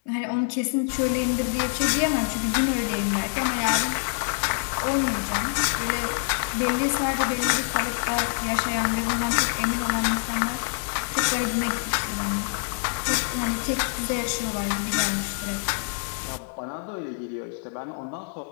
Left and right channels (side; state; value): right; silent; 61 dB below the other